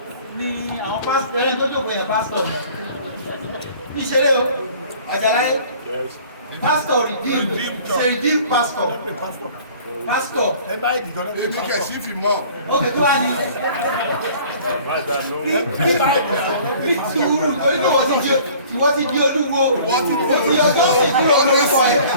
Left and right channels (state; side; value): inverted; both; correlation -0.50